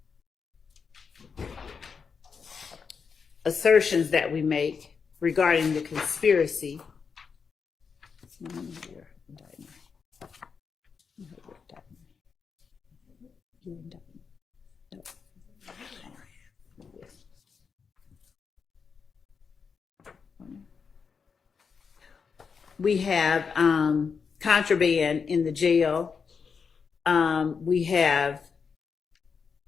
assertions that we make regarding the conspiracy. We have contraband in the jail. We have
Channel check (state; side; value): quieter; right; 5.8 dB